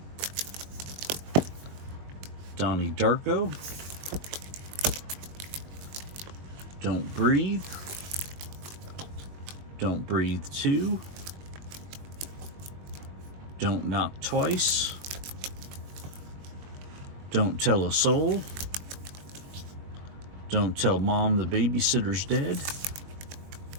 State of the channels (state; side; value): late; left; 22 ms